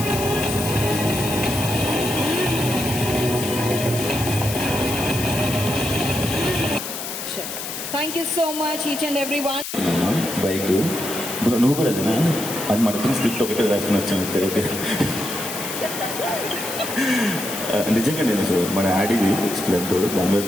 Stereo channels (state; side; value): noise; left; hiss, 7 dB below the sound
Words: Thank you so much each and everyone. Bike నువ్వు కూడా అదేనా? అది మన ఇద్దరు script ఒకటే రాసుకుని వచ్చాను. ఓకే నిజంగా నేను మన ఆడిది స్ప్లెండర్ దాని మీద